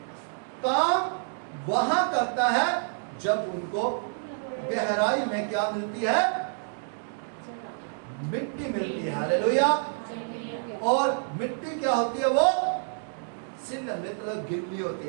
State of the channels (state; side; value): silent; left; 59 dB below the other